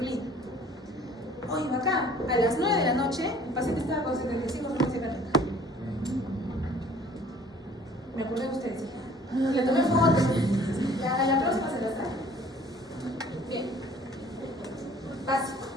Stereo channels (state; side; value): normal; both; correlation 0.52